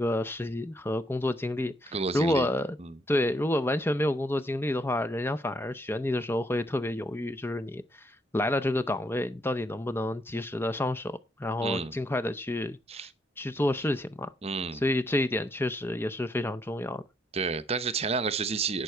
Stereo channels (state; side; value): normal; both; correlation 0.72